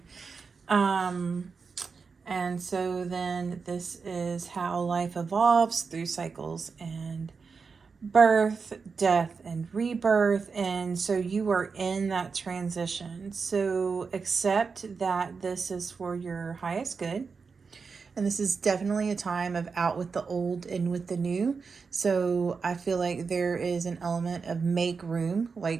And so then this is how life evolves through cycles and birth, death, and rebirth. And so you are in that transition. So accept that this is for your highest good. And this is definitely a time of out with the old, in with the new. So I feel like there is an element of make room,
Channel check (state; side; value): quieter; left; 5.1 dB